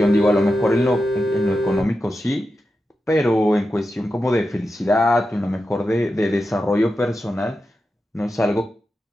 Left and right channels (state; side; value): normal; both; correlation 0.90